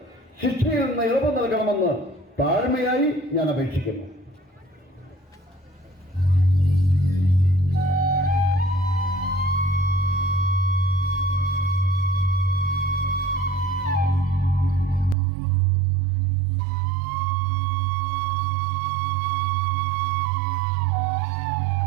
ശിക്ഷയിൽ നിന്ന് ഇളവ് നൽകണമെന്ന് താഴ്മയായി ഞാൻ അപേക്ഷിക്കുന്നു.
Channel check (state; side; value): drops out; left; at 15.2 s